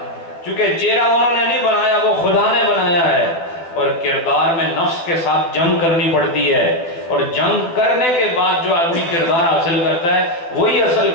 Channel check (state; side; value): late; right; 12 ms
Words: چونکہ چہرہ انہوں نے نہیں بنایا، وہ خدا نے بنایا ہے۔ اور کردار میں نفس کے ساتھ جنگ کرنی پڑتی ہے، اور جنگ کرنے کے بعد جو آدمی کردار حاصل کرتا ہے وہی اصل